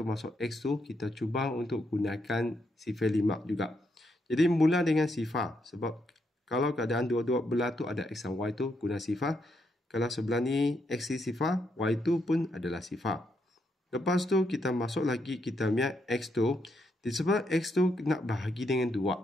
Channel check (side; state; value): both; normal; correlation 0.79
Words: masuk X tu, kita cuba untuk gunakan sifar 5 juga. Jadi mula dengan sifar. Sebab kalau keadaan dua-dua belah tu ada X dan Y tu, guna sifar. Kalau sebelah ni X ni sifar, Y tu pun adalah sifar. Lepas tu kita masuk lagi kita punya X tu. Disebab X tu nak bahagi dengan